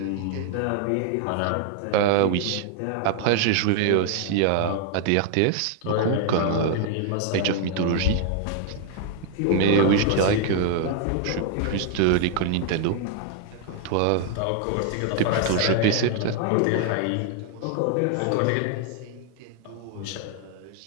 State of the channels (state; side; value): different; both; correlation 0.00